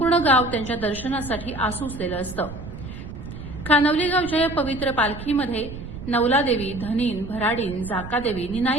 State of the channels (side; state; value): right; noise; rumble, 11 dB below the sound